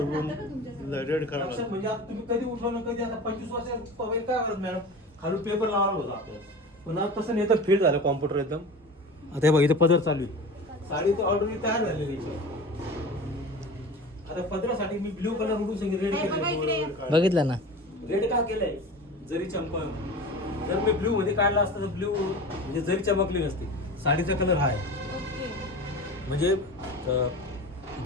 उडून रेड करावा लक्षात लागतो. म्हणजे आता तुम्ही कधी उठवलं कधी आता 25 वर्ष पहिले काय करत मॅडम खालून पेपर लावला होता आपल्याला पण आता तसं नाही तर फीड झालं कॉम्प्युटर एकदम. आता हे बघा इथं पदर चालू आहे साडी तर ऑर्डर तयार झालेली आहे. आता पदरासाठी मी ब्ल्यू कलर उडून सांगितलं रेड केलं. बघितलं ना. रेड का केलंय जरी चमक जर मी ब्ल्यू मध्ये काढला असता तर ब्ल्यू म्हणजे जरी चमकली नसती. साडीचा कलर हा आहे ओके. म्हणजे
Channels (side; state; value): both; normal; correlation 0.34